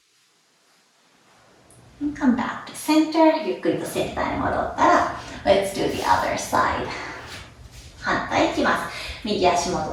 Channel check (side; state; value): both; identical; correlation 1.00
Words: And come back to center. ゆっくりとセンターに戻ったら Let's do the other side. 反対いきます。右足